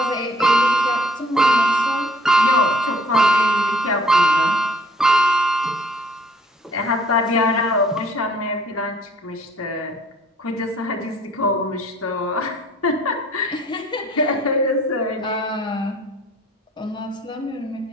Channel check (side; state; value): both; normal; correlation 0.57